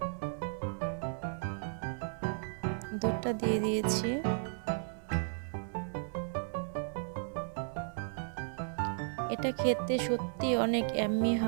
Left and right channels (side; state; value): left; silent; 55 dB below the other